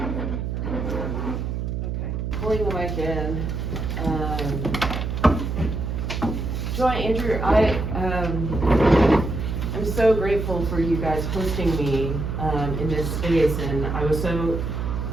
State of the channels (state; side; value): noise; right; hum, 3 dB below the sound